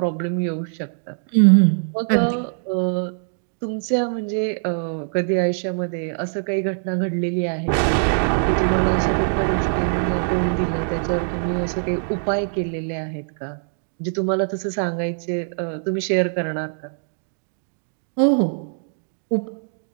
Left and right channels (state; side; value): silent; left; digital silence